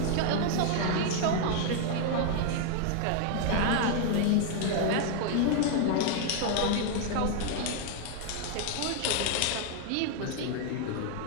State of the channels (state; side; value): different; both; correlation 0.00